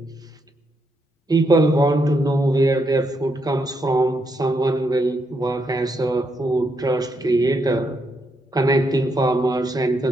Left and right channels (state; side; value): normal; both; correlation 0.79